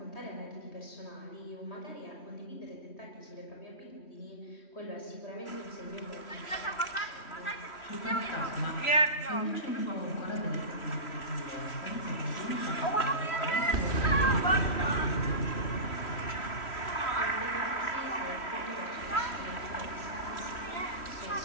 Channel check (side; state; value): right; late; 3.0 ms